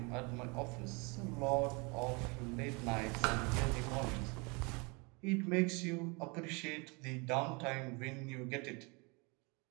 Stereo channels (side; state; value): left; quieter; 29.6 dB